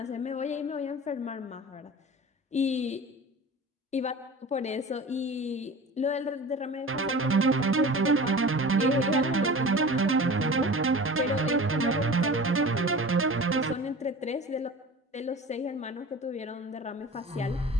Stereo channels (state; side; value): normal; both; correlation 0.37